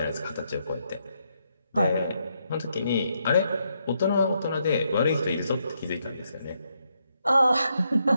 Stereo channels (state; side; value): inverted; both; correlation -0.78